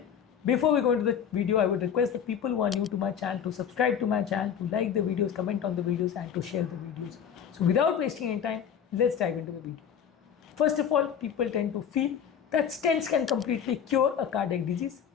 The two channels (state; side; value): quieter; right; 8.1 dB